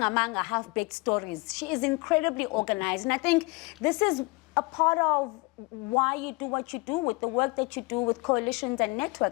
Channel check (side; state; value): right; quieter; 26.1 dB